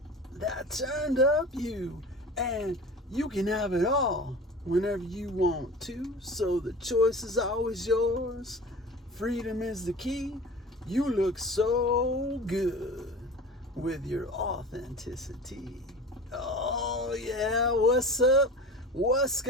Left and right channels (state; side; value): normal; both; correlation 0.37